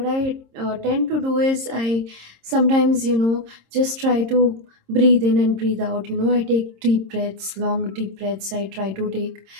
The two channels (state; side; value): late; left; 26 ms